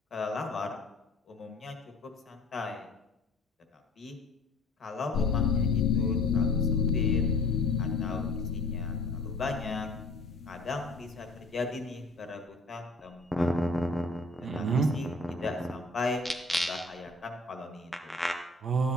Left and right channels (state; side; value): quieter; right; 3.0 dB